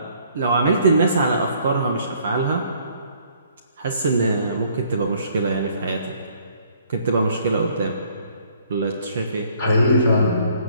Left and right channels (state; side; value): inverted; both; correlation -0.62